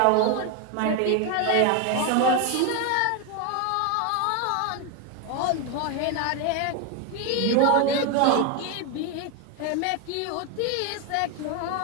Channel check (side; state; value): both; different; correlation 0.01